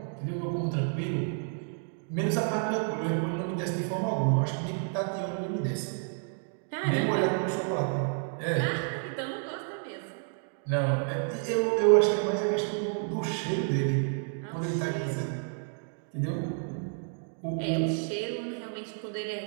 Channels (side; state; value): left; silent; 55 dB below the other